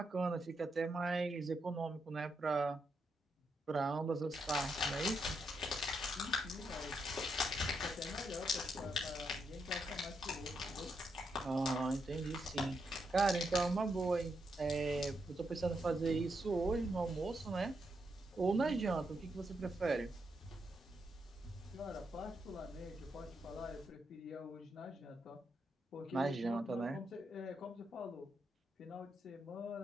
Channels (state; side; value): normal; both; correlation 0.81